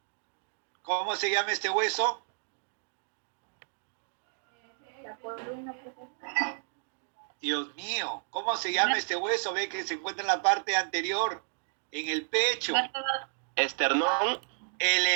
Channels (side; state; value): left; silent; digital silence